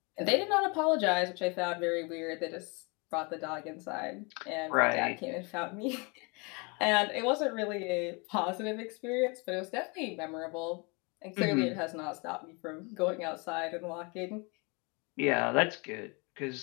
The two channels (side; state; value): right; quieter; 30.5 dB